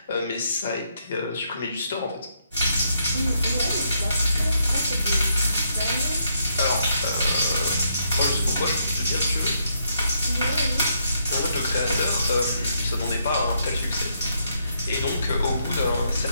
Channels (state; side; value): inverted; both; correlation -0.76